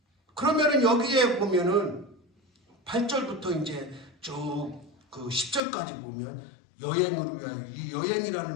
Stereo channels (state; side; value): drops out; right; at 5.6 s